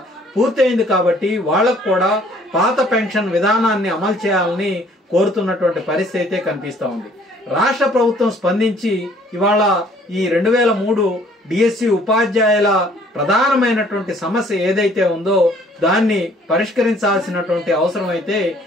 పూర్తయింది కాబట్టి వాళ్ళకు కూడా పాత పెన్షన్ విధానాన్ని అమలు చేయాలని కోరుతున్నటువంటి పరిస్థితి అయితే కనిపిస్తా ఉంది. రాష్ట్ర ప్రభుత్వం స్పందించి ఇవాళ ఈ 2003 డిఎస్సి ఉపాధ్యాయుల ప్రధానమైనటువంటి సమస్య ఏదైతే ఉందో దాన్ని పరిష్కరించాల్సినటువంటి అవసరం అయితే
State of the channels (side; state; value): both; normal; correlation 0.59